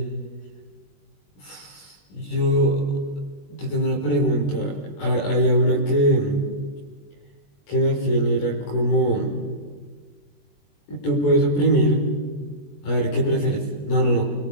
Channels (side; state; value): right; late; 21 ms